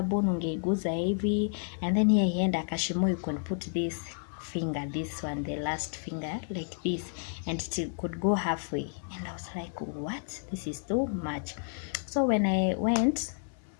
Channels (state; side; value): silent; right; 57 dB below the other